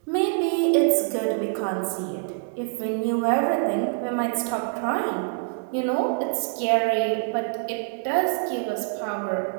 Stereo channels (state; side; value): silent; left; digital silence